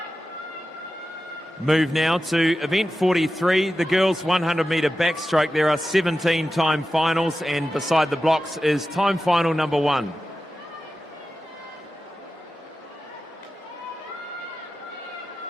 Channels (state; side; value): normal; both; correlation 0.93